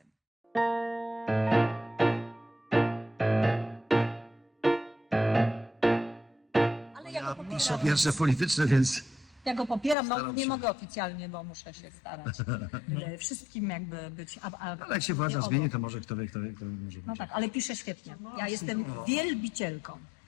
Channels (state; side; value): drops out; right; at 10.0 s